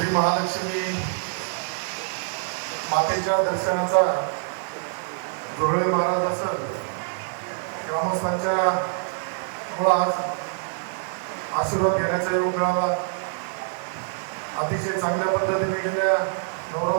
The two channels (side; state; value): left; silent; 62 dB below the other